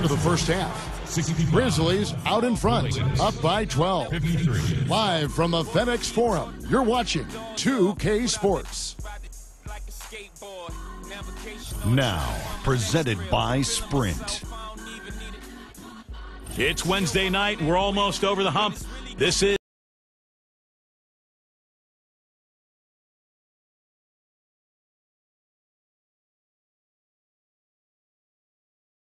of the first half. Grizzlies out in front, up by 12. Live from the FedEx Forum, you're watching 2K Sports. Now, presented by Sprint. It's Wednesday night. We're almost over the hump. This is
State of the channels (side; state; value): both; identical; correlation 1.00